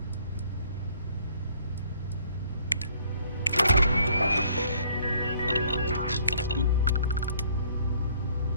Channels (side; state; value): both; inverted; correlation -0.60